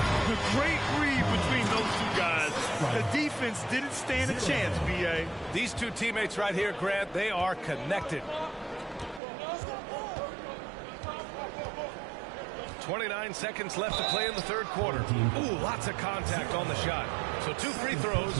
great read between those two guys. The defense didn't stand a chance, B.A. These two teammates right here, Grant, they are connected. 29 seconds left to play in the third quarter. Ooh, lots of contact on the shot. So 2 free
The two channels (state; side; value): drops out; left; at 9.2 s